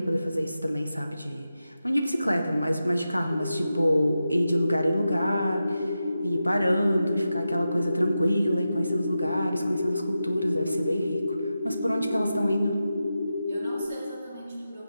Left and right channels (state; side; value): inverted; both; correlation -0.90